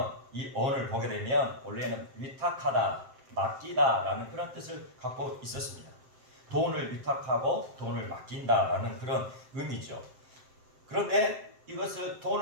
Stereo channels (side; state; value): left; late; 7.6 ms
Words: 이 언을 보게 되면 원래는 위탁하다, 맡기다라는 그런 뜻을 갖고 있었습니다. 돈을 위탁하고 돈을 맡긴다라는 그런 의미죠. 그런데 이것을